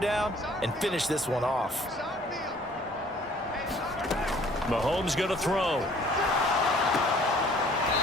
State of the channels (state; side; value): normal; both; correlation 0.56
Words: and finish this one off. Mahomes going to throw. Oh,